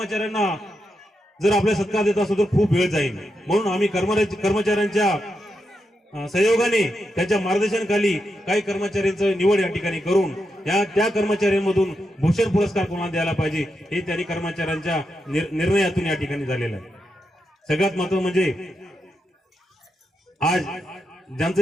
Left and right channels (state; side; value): normal; both; correlation 0.85